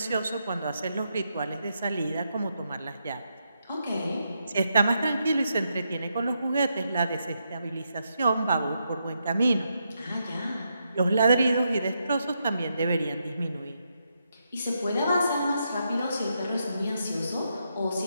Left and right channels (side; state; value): both; inverted; correlation -0.82